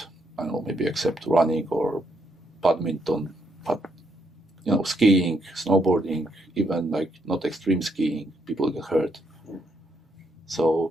I don't know, maybe except running or badminton, but skiing, snowboarding, even like not extreme skiing, people get hurt.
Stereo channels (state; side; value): normal; both; correlation 0.76